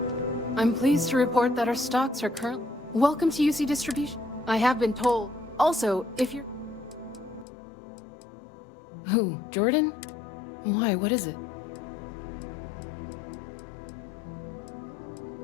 I'm pleased to report that our stocks are currently... Welcome to UC Distribution. I have been told. Also, if you're... Who? Jordan? Why? What is it?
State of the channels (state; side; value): drops out; right; at 7.5 s